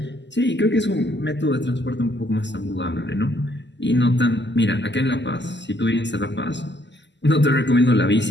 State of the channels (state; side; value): late; right; 0.51 ms